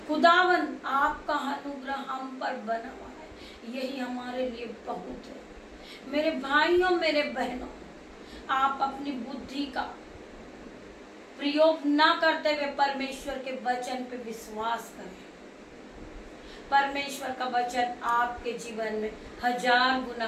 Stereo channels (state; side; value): identical; both; correlation 1.00